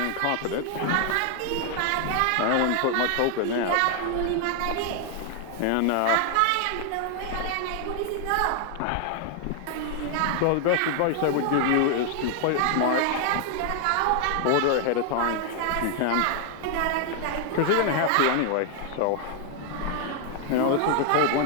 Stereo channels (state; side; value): different; both; correlation 0.00